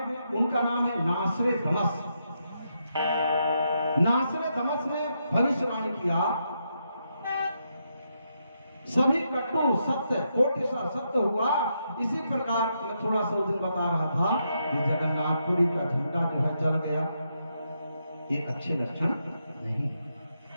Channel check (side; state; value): both; inverted; correlation -0.81